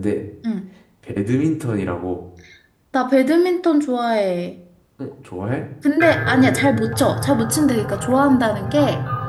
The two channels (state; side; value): identical; both; correlation 1.00